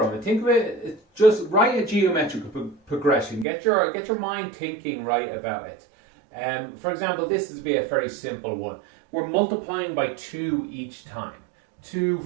it. Think of it, just write a geometric progression. Get your mind thinking right about it. For example, this would be a very simple one. We're multiplying by 2 each time. 2,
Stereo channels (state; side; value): drops out; left; at 3.5 s